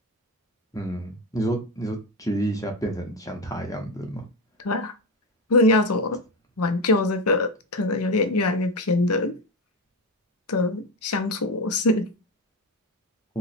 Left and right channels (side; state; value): both; normal; correlation 0.16